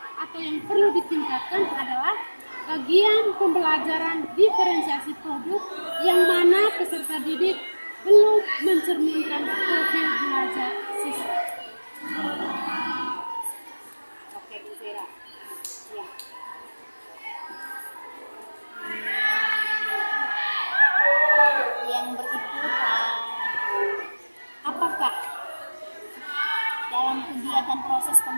atau yang perlu ditingkatkan adalah bagian pembelajaran diferensiasi produk yang mana peserta didik belum mencerminkan profil belajar siswa. Oke, Bu Vera. Ya. Yang berikut, apakah dalam kegiatan proses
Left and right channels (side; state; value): both; inverted; correlation -1.00